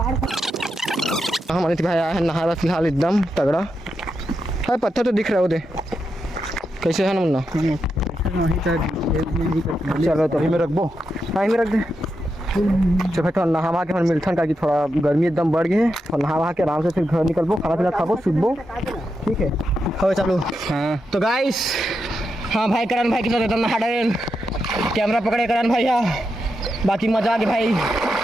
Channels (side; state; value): both; normal; correlation 0.86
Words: हमारे भाई आया है नहा रहा फिलहाल एकदम तगड़ा है। पत्थर तो दिख रहा है उधर, कैसे है ना मुन्ना? चलो तो में रख दो, हाँ में रख दे। चलो भाई थोड़ा नहा के मिलथन का कि थोड़ा गर्मी एकदम बढ़ गई है। और नहा के आराम से फिर घर निकलबो, खाना पीना खाबो, सुबो, ठीक है? हो चलो। हाँ तो गाइस, हाँ भाई करण भाई के साथ एकदम नहा डरे, कैमरा पकड़े करण भाई। हाँ बाकी मजा आ गया भाई,